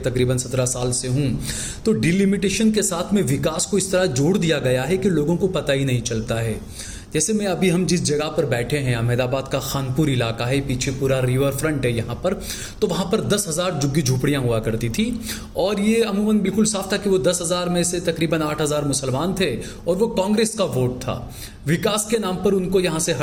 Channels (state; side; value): identical; both; correlation 1.00